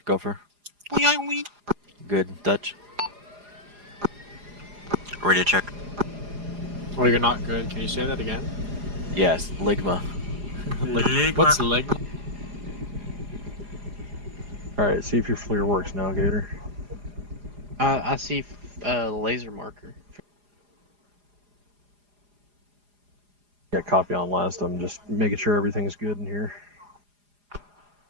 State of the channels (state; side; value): late; left; 4.9 ms